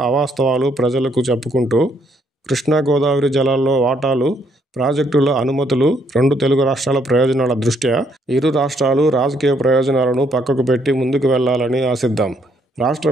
అవాస్తవాలు ప్రజలకు చెప్పుకుంటూ కృష్ణా గోదావరి జలాల్లో వాటాలు, ప్రాజెక్టుల అనుమతులు, రెండు తెలుగు రాష్ట్రాల ప్రయోజనాల దృష్ట్యా ఇరు రాష్ట్రాలు రాజకీయ ప్రయోజనాలను పక్కకు పెట్టి ముందుకు వెళ్లాలని ఆశిద్దాం. రాష్ట్ర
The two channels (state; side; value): normal; both; correlation 0.70